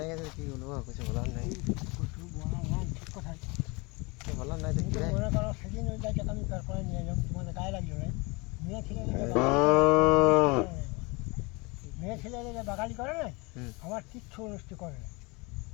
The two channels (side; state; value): right; quieter; 27.3 dB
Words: গেছে, কি বলবো, কিছু বলার নেই, বলার নাই। দেখি সেদিন ওই গাছটা আমি তারপরে নিয়ে এলাম, তোমাদের গায়ে লাগলো না, মেয়ে ছেলে বাগালি করে না, আমার কিচ্ছু অনুষ্ঠি করে না,